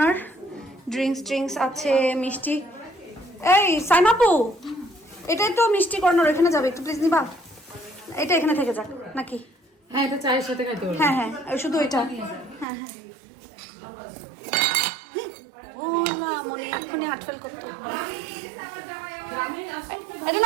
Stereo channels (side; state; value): left; drops out; at 12.7 s